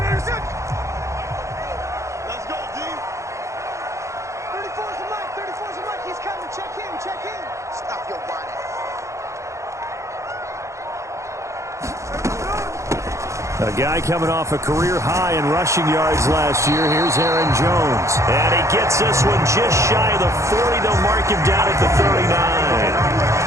A guy coming off a career high in rushing yards last year. Here's Aaron Jones. And he gets this one just shy of the 40. They'll mark him down at the 39.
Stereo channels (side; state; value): left; late; 0.14 ms